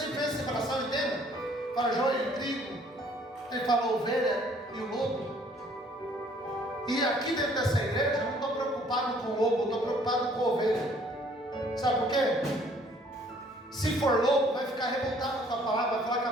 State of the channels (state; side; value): normal; both; correlation 0.60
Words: penso em separação, entenda? Para joio e trigo. Ele fala ovelha e o lobo. E aqui dentro dessa igreja, eu não estou preocupado com o lobo, eu estou preocupado com a ovelha. Sabe por quê? Se for lobo, vai ficar revoltado com a palavra, vai falar que a